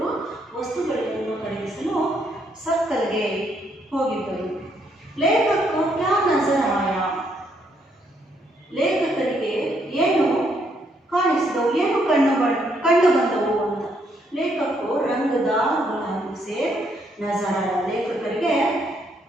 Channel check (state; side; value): normal; both; correlation 0.73